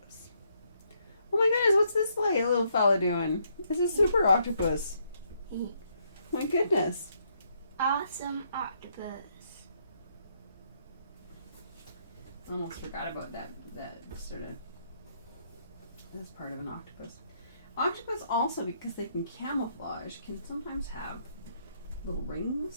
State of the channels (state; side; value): inverted; both; correlation -0.73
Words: Oh my goodness, what's this little fella doing? It's a super octopus. My goodness. Awesome octopus. Almost forgot about that sort of this part of an octopus. Octopus also, because they can camouflage, can sometimes have little